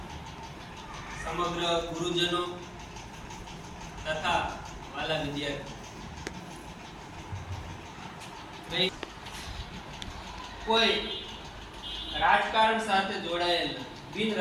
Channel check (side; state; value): both; identical; correlation 1.00